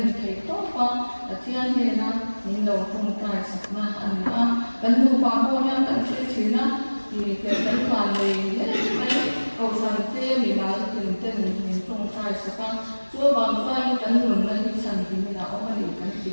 itu apa bagian ni nak ni dah contoh sekarang anda dan lupa boleh tak cerita thì cái phần này cầu sản tê thì là từng tên mình không sai sẽ có chúa bằng vai cánh nguồn lên đi sản thì mình đã có cái gì cái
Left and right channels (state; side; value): inverted; both; correlation -1.00